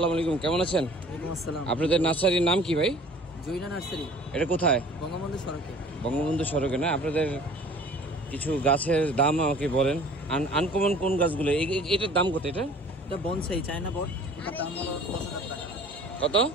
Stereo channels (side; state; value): both; normal; correlation 0.49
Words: আলাইকুম, কেমন আছেন? আপনাদের নার্সারির নাম কি ভাই? জৈনা নার্সারি। এটা কোথায়? বঙ্গবন্ধু সড়কে। বঙ্গবন্ধু সড়কে না? আপনাদের কিছু গাছের দাম আমাকে বলেন। আনকমন কোন গাছগুলো? এটার দাম কত? এটা বনসাই চায়না বট, এটার দাম হলো 10,000 টাকা। কত?